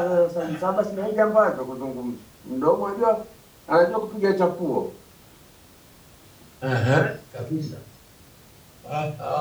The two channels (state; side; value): identical; both; correlation 1.00